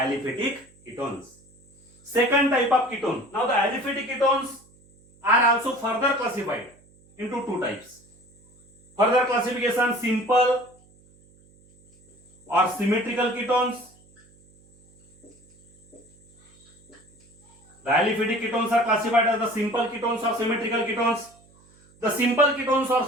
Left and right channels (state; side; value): noise; right; hum, 29 dB below the sound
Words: ketones. Second type of ketone. Now the aliphatic ketones are also further classified into two types. Further classification: simple or symmetrical ketones. The aliphatic ketones are classified as the simple ketones or symmetrical ketones. The simple ketones or